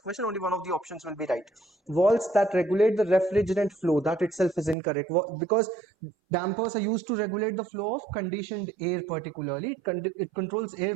question, only one of the options will be right. Walls that regulate the refrigerant flow, that itself is incorrect, because dampers are used to regulate the flow of conditioned air. Particularly it controls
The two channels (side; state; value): left; drops out; at 4.8 s